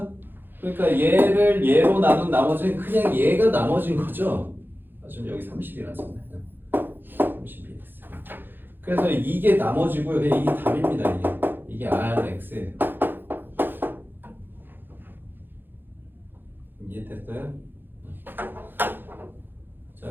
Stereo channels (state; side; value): late; left; 0.097 ms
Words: 그러니까 얘를 얘로 나눈 나머지는 그냥 얘가 나머진 거죠? 지금 여기 30이라서 그래서 이게 나머지고요. 이게 답입니다. 이게 Rx예요. 이해됐어요? 자,